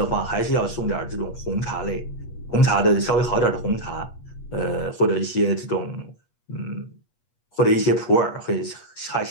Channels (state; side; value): late; right; 8.4 ms